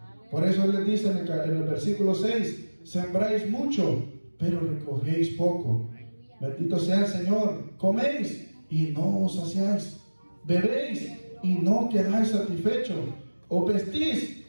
Por eso Él les dice en el versículo 6: sembráis mucho, pero recogéis poco. Bendito sea el Señor. Coméis y no os saciáis, bebéis y no quedáis satisfechos, os vestís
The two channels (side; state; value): both; inverted; correlation -1.00